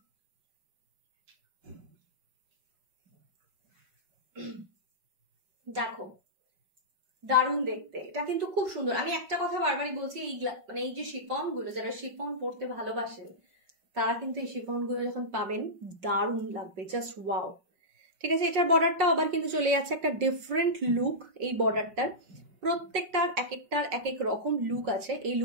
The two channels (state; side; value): late; left; 5.5 ms